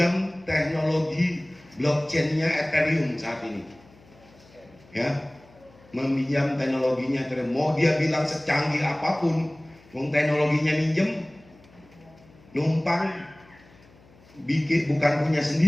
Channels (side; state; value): left; noise; hum, 27 dB below the sound